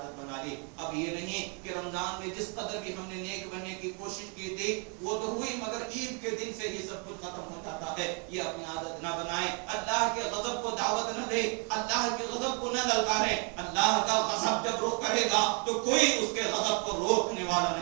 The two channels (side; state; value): left; quieter; 36.2 dB